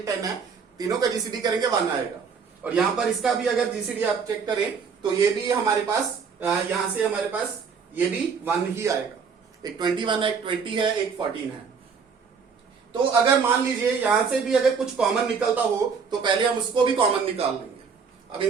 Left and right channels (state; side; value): quieter; left; 5.8 dB